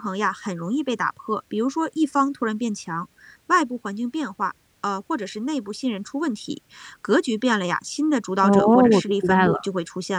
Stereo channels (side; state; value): both; identical; correlation 1.00